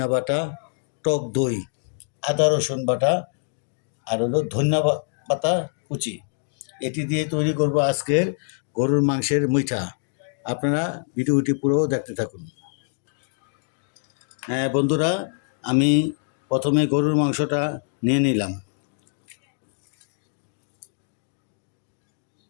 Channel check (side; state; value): right; silent; 62 dB below the other